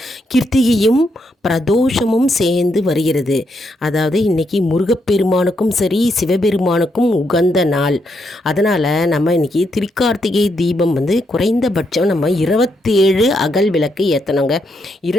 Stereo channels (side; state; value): both; normal; correlation 0.79